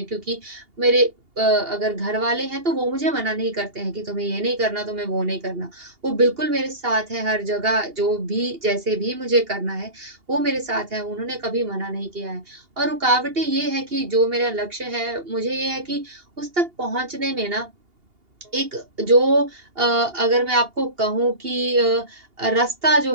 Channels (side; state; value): left; late; 2.8 ms